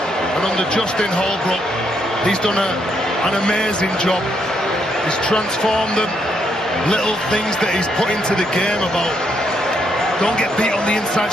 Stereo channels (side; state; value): both; normal; correlation 0.75